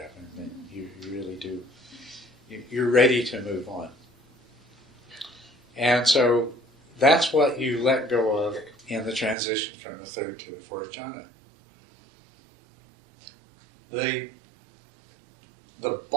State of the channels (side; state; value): left; drops out; at 9.3 s